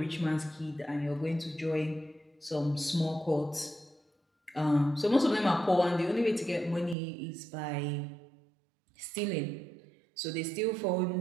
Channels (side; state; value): left; drops out; at 7.0 s